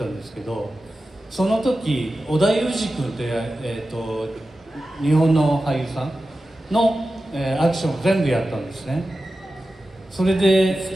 んですけど、その時織田裕二君って、日本の俳優さんの、アクションを全部やったんですね。それで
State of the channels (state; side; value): normal; both; correlation 0.93